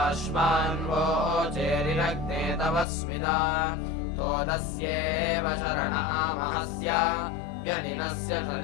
चेरिरग्ने तव स्मिदा तोदस्येव शरणामहस्य व्यनिनस्य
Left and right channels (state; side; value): drops out; right; at 2.9 s